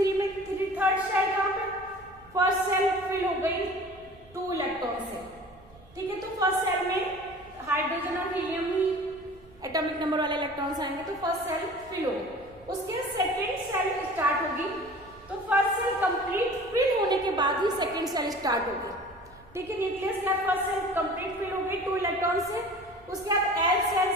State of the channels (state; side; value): noise; right; rumble, 25 dB below the sound